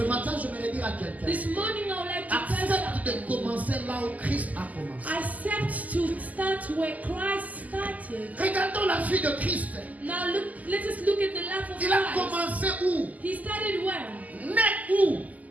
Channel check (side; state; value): left; late; 0.078 ms